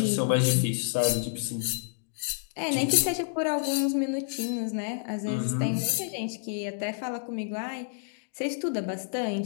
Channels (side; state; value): right; silent; digital silence